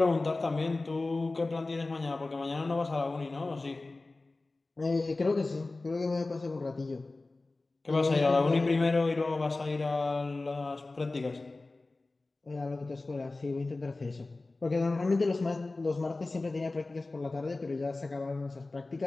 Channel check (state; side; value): quieter; right; 3.3 dB